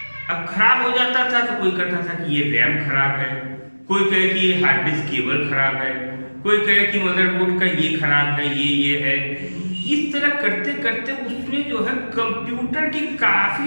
अब खराब हो जाता था तो कोई कहता था कि ये रैम खराब है, कोई कहे कि ये हार्ड डिस्क केबल खराब है, कोई कहे कि मदरबोर्ड का ये खराब है, ये है। इस तरह करते करते उसमें जो है कंप्यूटर की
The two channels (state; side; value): inverted; both; correlation -1.00